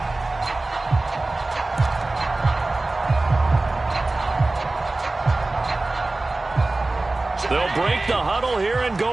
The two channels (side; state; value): left; quieter; 3.1 dB